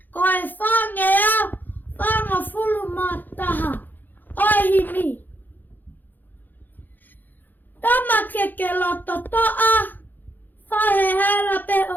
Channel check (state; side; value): late; right; 0.087 ms